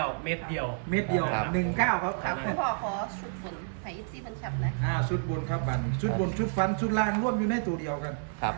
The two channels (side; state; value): left; silent; 56 dB below the other